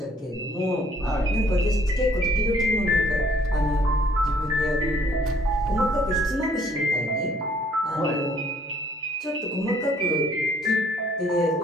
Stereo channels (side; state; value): both; normal; correlation 0.62